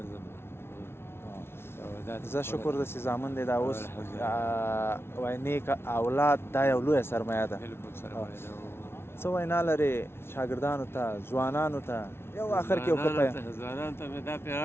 زه شکر ده چې زامن دی دا اوس وایي نیک اولاد دا یو لویه سرمایه ده څه وینا لرې شاګردانو ته ځوانانو ته یو آخر کې یو ځوانانو ته مې دا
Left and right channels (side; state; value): right; late; 0.12 ms